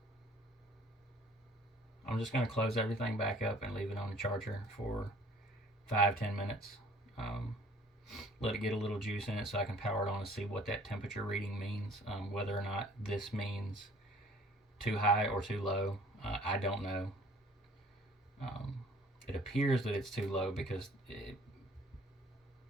I'm just going to close everything back up and leave it on the charger for 5-10 minutes. Let it get a little juice in it so I can power it on and see what that temperature reading means. Whether or not this means too high or too low, I don't know. It appears that it's too low because it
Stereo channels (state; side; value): normal; both; correlation 0.55